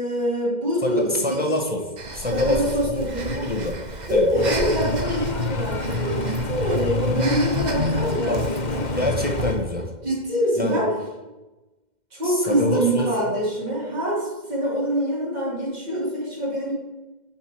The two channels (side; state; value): left; late; 2.1 ms